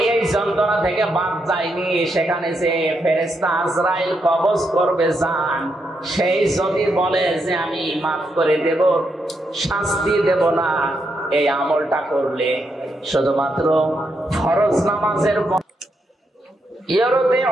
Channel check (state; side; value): normal; both; correlation 0.81